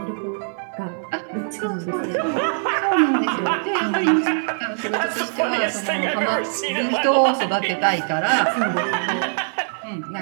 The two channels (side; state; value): left; silent; digital silence